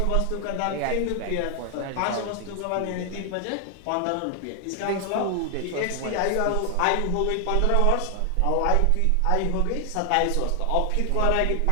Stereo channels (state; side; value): different; both; correlation 0.00